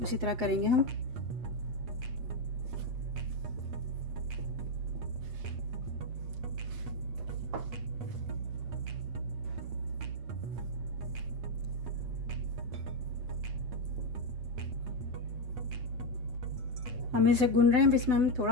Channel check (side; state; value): left; late; 8.0 ms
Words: तरह करेंगे हम। हम इसे गूंद रहे हैं, इसमें हम